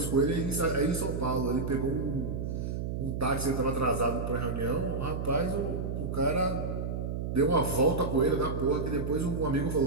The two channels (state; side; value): noise; right; hum, 3 dB below the sound